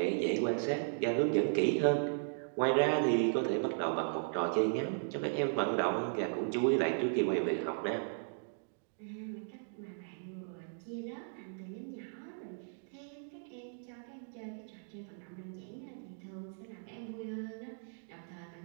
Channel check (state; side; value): silent; left; digital silence